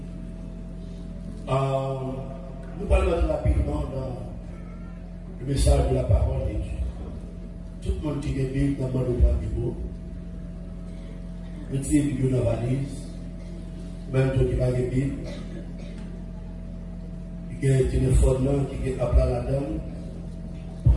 Nous parlons rapidement dans le message de la parole de Dieu. Tout le monde qui est Bible dans le monde du beau. Le type qui est dans la valise, même toi qui va de Bible, qui a un téléphone là, qui est appelé à la dame,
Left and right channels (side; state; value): both; identical; correlation 1.00